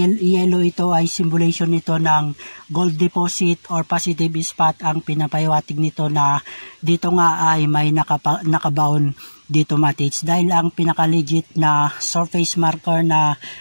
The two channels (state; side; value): inverted; both; correlation -1.00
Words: yellow, ito ay symbolization nito ng gold deposit or positive spot ang pinapahiwatig nito, na dito nga ay may nakabaon dito mga tids, dahil ang pinaka-legit na surface marker na